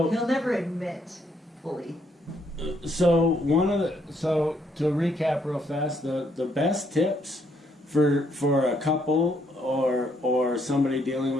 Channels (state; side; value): normal; both; correlation 0.71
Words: He'll never admit fully. So to recap real fast, the best tips for a couple or somebody dealing